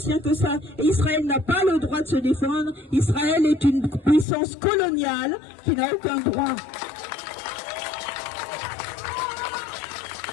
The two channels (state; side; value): drops out; right; at 4.2 s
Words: que ça. Et Israël n'a pas le droit de se défendre. Israël est une puissance coloniale qui n'a aucun droit.